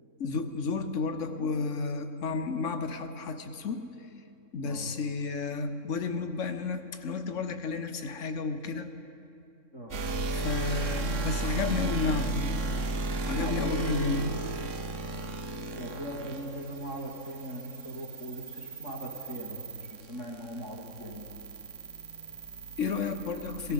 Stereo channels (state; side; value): late; right; 3.6 ms